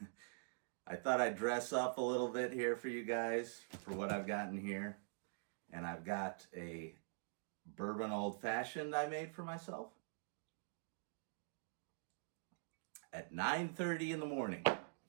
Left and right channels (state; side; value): silent; left; digital silence